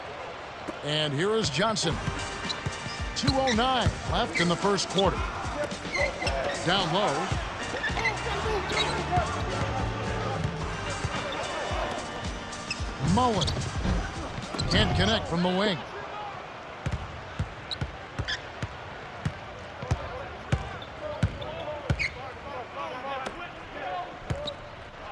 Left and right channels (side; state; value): both; identical; correlation 1.00